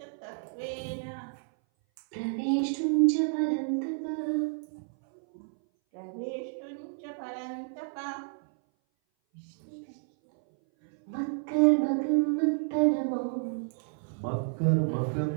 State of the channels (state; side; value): silent; left; 58 dB below the other